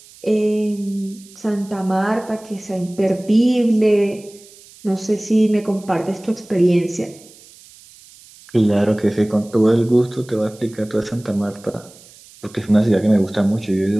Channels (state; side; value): noise; right; hiss, 23 dB below the sound